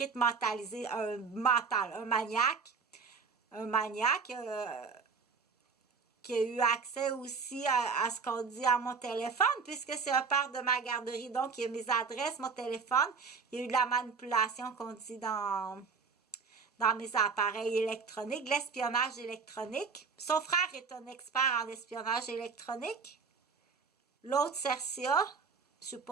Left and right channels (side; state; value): left; quieter; 5.3 dB